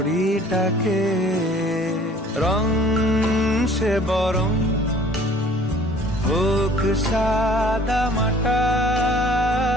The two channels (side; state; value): both; normal; correlation 0.52